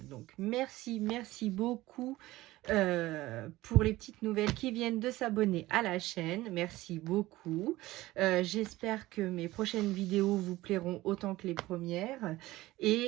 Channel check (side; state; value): left; quieter; 17.7 dB